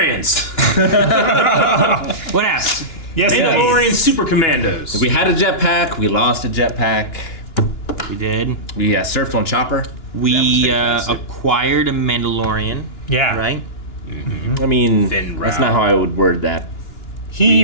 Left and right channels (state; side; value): late; right; 2.9 ms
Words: What happened? Yes. Mandalorian Super Commandos. We had a jetpack. We lost a jetpack. We did. We surfed on Chopper. We fantastic. acquired a Mandalorian. Yeah. Right? I mean, Finn that's Rao. not how I would word that. He